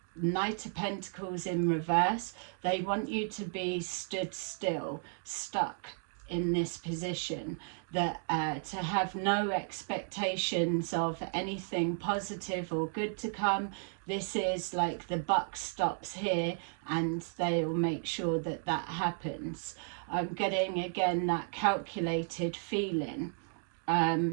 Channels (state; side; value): silent; left; 55 dB below the other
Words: Knight of Pentacles in reverse. They want you to be stood still, stuck in this position, that to have no expectations of anything positive or good to come. This is like the buck stops here, and they'll make sure that that happens. I'm getting again that calculated feeling.